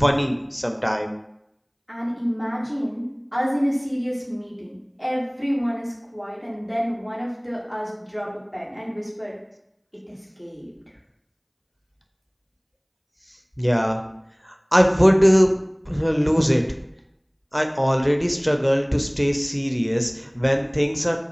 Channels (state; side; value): identical; both; correlation 1.00